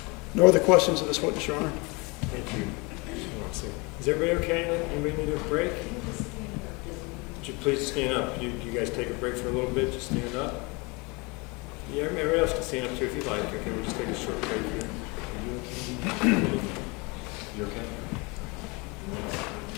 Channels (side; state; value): right; quieter; 27.9 dB